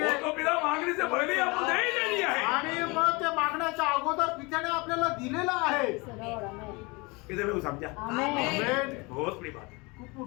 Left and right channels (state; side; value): quieter; right; 26.7 dB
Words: वो तो पिता मांगने से पहले आपको दे ही दे दिया है. आणि मग ते मागण्याच्या अगोदर पित्याने आपल्याला दिलेलं आहे. Lord, amen. किसे में वो समझा? Amen. आमेन. बहुत बड़ी बात है. खूप खूप